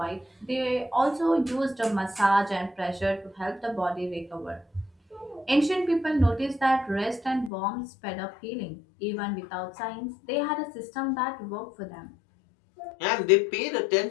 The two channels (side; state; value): right; drops out; at 7.5 s